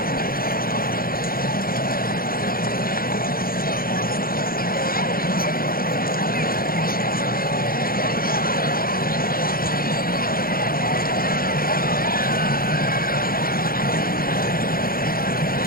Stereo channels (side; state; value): right; late; 0.42 ms